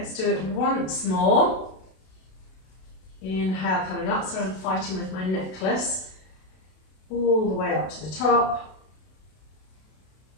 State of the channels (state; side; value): late; right; 32 ms